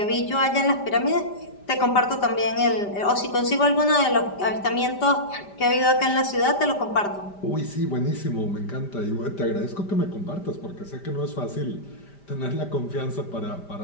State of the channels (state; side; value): late; right; 5.1 ms